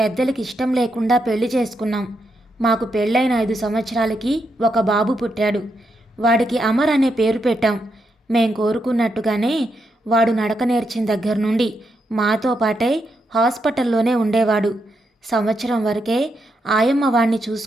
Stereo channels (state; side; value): normal; both; correlation 0.82